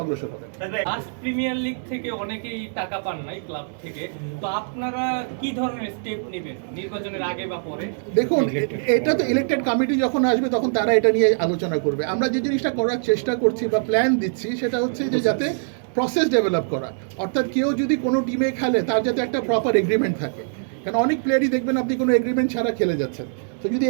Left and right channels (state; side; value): silent; left; digital silence